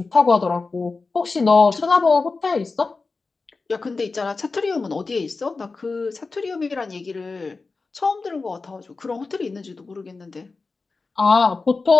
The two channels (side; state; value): right; quieter; 4.0 dB